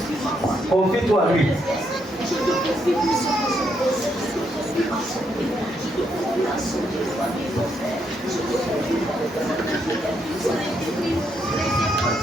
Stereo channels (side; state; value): both; normal; correlation 0.77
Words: Confie-toi à lui.